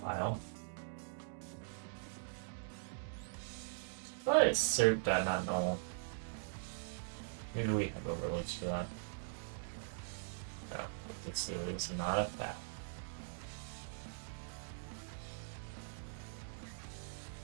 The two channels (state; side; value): silent; left; digital silence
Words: But it's cert.not-null. Maybe we have overloads for that. No, this is not a fact.